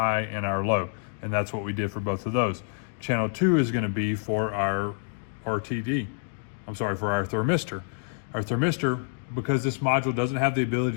and our low. And that's what we did for both of those. Channel 2 is going to be for our RTD. For our thermistor. Our thermistor, because this module doesn't have the ability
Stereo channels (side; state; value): right; silent; 60 dB below the other